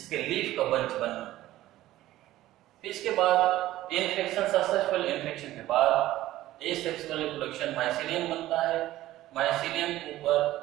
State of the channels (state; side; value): quieter; left; 15.2 dB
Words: लीफ का बंच बनना। इसके बाद इन्फेक्शन, सक्सेसफुल इन्फेक्शन के बाद एसेक्सुअल रिप्रोडक्शन माइसीलियम बनता है। माइसीलियम के ऊपर